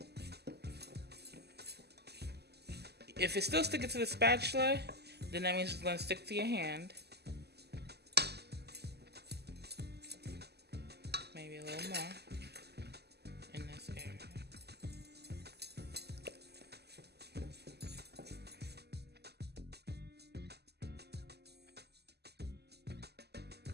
If it's still sticking to the spatula, then that means it's going to stick to your hand. Maybe a little more in this area.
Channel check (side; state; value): left; late; 0.48 ms